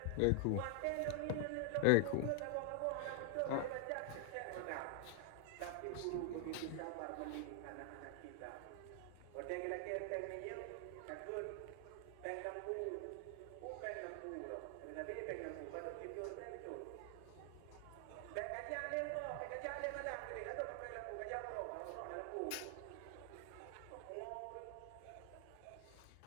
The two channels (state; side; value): different; both; correlation 0.00